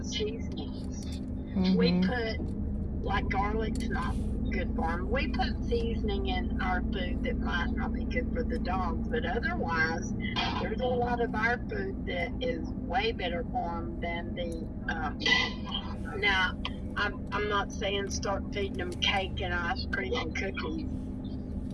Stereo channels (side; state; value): both; identical; correlation 1.00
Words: seasonings. We put, like, garlic's not good for them. We put seasoning in our food that might not be good for the dogs, but otherwise, there's a lot of our food that is way better for them than the, now, I'm not saying start feeding them cake and ice cream and cookies.